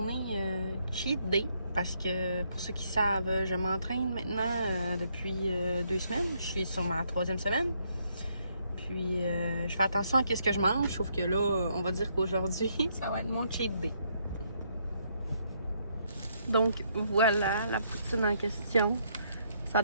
cheat day. Parce que, pour ceux qui savent, je m'entraîne maintenant depuis 2 semaines. Je suis sur ma 3e semaine. Puis, je fais attention à ce que je mange. Sauf que là, on va dire qu'aujourd'hui, ça va être mon cheat day. Donc, voilà la poutine en question. Ça a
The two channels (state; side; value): inverted; both; correlation -0.73